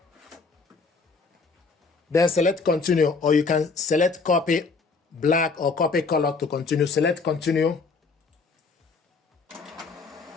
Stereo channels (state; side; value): quieter; right; 4.4 dB